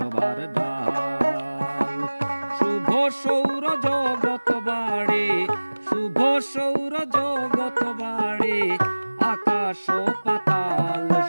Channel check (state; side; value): inverted; both; correlation -1.00